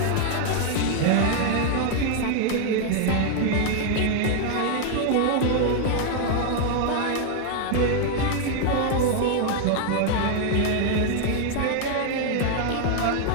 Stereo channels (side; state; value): both; different; correlation 0.00